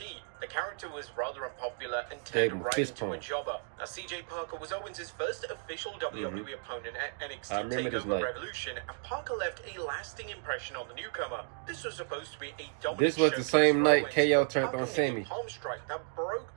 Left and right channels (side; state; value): left; silent; 56 dB below the other